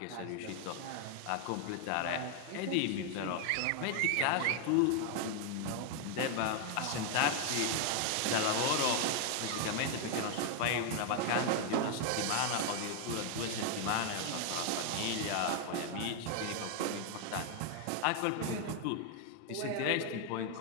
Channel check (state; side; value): different; both; correlation 0.00